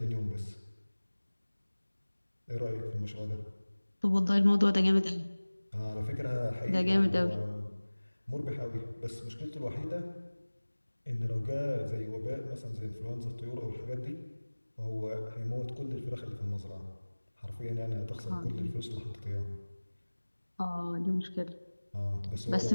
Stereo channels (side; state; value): both; inverted; correlation -1.00